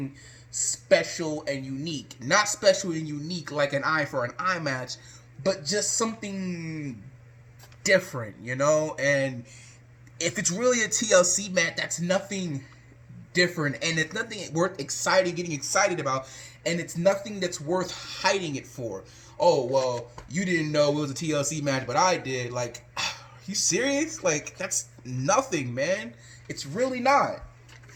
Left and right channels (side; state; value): both; identical; correlation 1.00